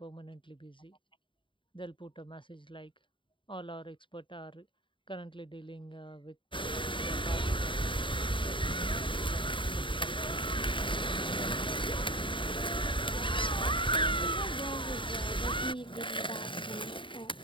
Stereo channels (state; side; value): late; right; 0.24 ms